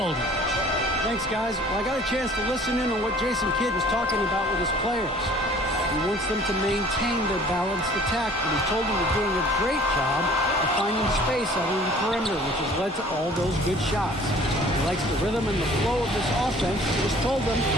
Thanks, guys. Well, I got a chance to listen in on what Jason Kidd was talking about with his players. He wants them to maintain their balanced attack, but he told them they're doing a great job of finding space out on the perimeter, which has led to all those good shots. He likes the rhythm and the flow of this offense. He just told them,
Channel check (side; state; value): both; normal; correlation 0.51